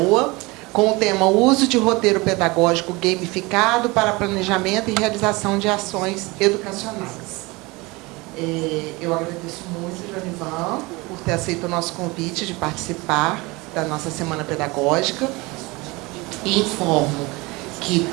com o tema Uso de roteiro pedagógico gamificado para planejamento e realização de ações educacionais. Eu agradeço muito, Joanivan, por ter aceito o nosso convite de participar da nossa Semana Pedagógica. E informo que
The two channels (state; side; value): quieter; left; 23.9 dB